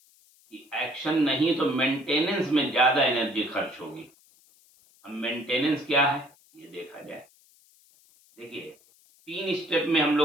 कि एक्शन नहीं तो मेंटेनेंस में ज़्यादा एनर्जी खर्च होगी। अब मेंटेनेंस क्या है ये देखा जाए। देखिए, 3 स्टेप में हम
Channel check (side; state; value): left; noise; hiss, 30 dB below the sound